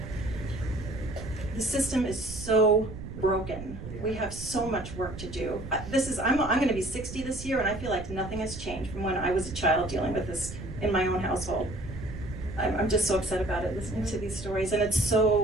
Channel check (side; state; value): right; noise; rumble, 10 dB below the sound